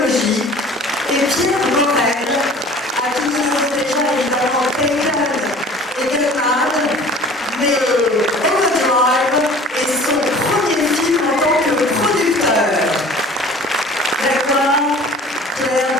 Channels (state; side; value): normal; both; correlation 0.46